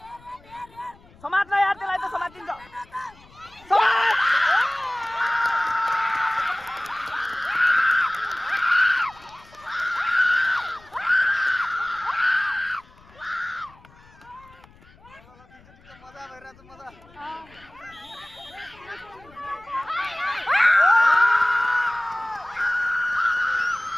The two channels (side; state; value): left; noise; rumble, 26 dB below the sound